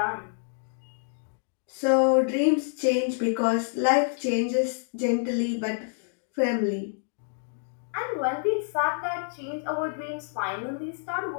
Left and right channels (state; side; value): silent; right; digital silence